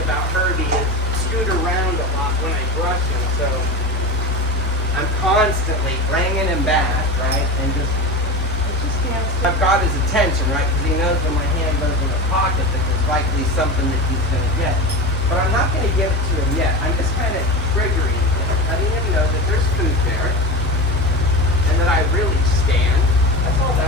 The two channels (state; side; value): normal; both; correlation 0.25